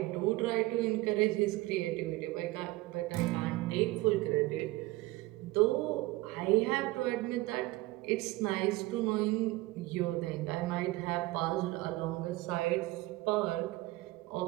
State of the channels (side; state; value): left; quieter; 19.6 dB